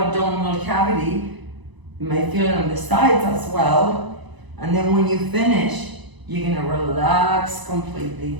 cavity. You might feel it on the sides as well. And then when you finish, you're gonna relax completely.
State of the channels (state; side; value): late; left; 1.0 ms